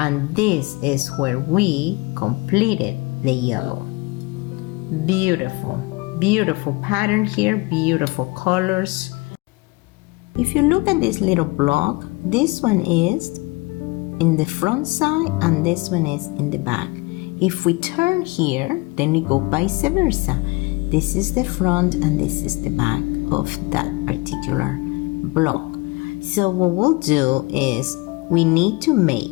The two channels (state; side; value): quieter; right; 24.9 dB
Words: this is where we completed the yellow. Beautiful, beautiful pattern here, beautiful colors. If you look at this little block, this one is in the front side and this one is in the back. If we turn here, then we go vice versa. This is the front and this is the back of that particular block. So what we'll do is we need to